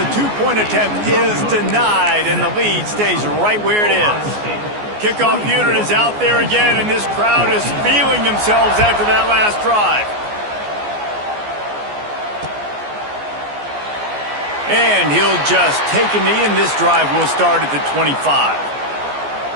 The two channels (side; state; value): left; late; 14 ms